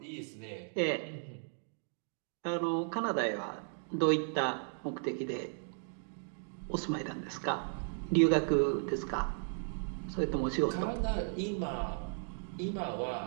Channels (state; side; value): silent; left; 54 dB below the other